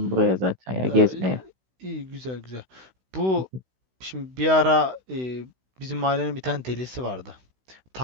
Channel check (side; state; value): left; late; 16 ms